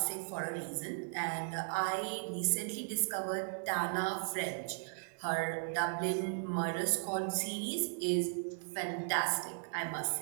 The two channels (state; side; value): silent; left; 53 dB below the other